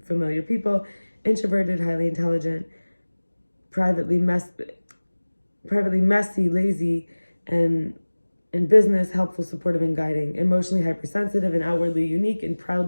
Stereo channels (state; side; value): inverted; both; correlation -1.00